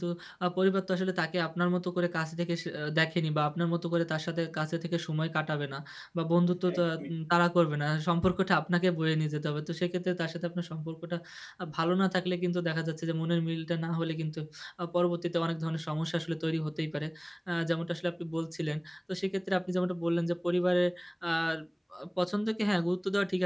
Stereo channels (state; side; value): identical; both; correlation 1.00